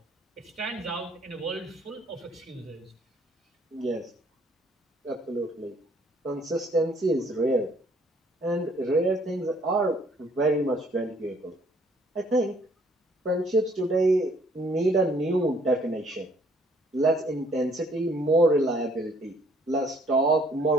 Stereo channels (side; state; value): both; normal; correlation 0.62